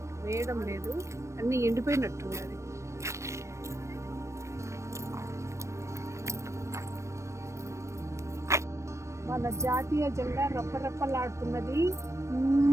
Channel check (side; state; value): left; late; 0.14 ms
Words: వేయడం లేదు, అన్ని ఎండిపోయినట్టున్నది. మన జాతీయ జెండా రప్పరప్పలాడుతున్నది.